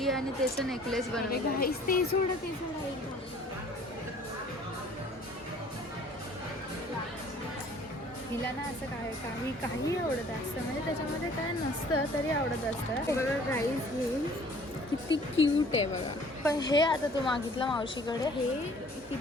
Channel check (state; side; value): normal; both; correlation 0.53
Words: आणि त्याचं नेकलेस बनवलं. घाईस ते सोडा हिला ना असं काही आवडत असतं, म्हणजे त्याच्यामध्ये काय नसतं तरी आवडत असतं. बघा गाईस, हे किती क्यूट आहे बघा. पण हे आता तू मागितलं मावशीकडे, हे